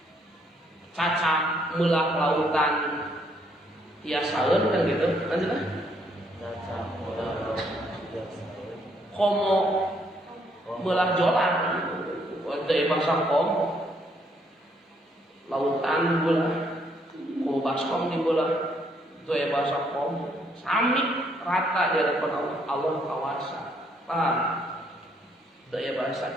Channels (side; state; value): both; normal; correlation 0.70